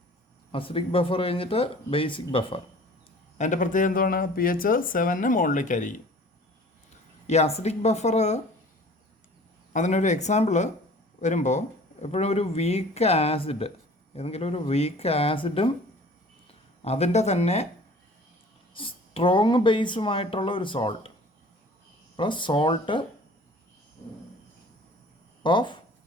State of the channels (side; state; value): both; normal; correlation 0.47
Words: അസിഡിക് ബഫർ കഴിഞ്ഞിട്ട് ബേസിക് ബഫർ. അതിൻ്റെ പ്രത്യേകത എന്താണ്? pH 7 മുകളിലേക്കായിരിക്കും. ഈ അസിഡിക് ബഫർ, അതിനൊരു എക്സാമ്പിൾ വരുമ്പോൾ എപ്പോഴും ഒരു വീക്ക് ആസിഡ്, ഏതെങ്കിലും ഒരു വീക്ക് ആസിഡും അതിൻ്റെ തന്നെ സ്ട്രോങ് ബേസുമായിട്ടുള്ള ഒരു സോൾട്ട്, അപ്പോൾ salt of